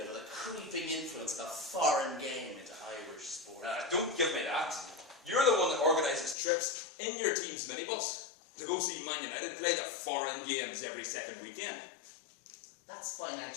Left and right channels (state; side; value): drops out; right; at 6.4 s